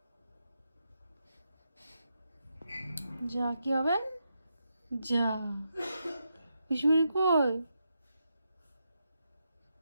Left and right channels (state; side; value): inverted; both; correlation -0.84